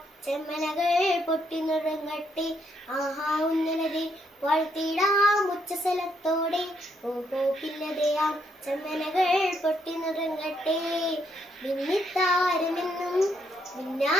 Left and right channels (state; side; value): normal; both; correlation 0.74